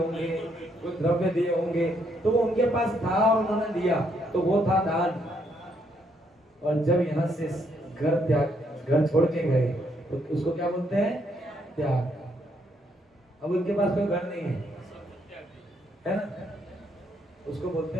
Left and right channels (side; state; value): both; normal; correlation 0.73